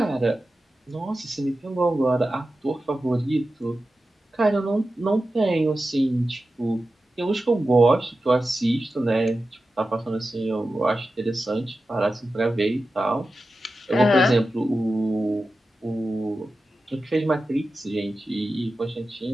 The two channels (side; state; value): both; normal; correlation 0.93